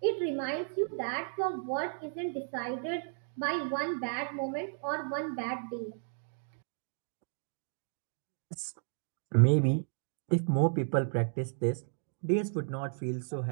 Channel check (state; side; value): silent; left; digital silence